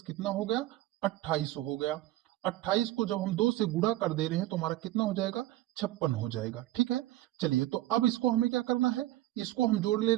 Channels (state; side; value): quieter; left; 15.7 dB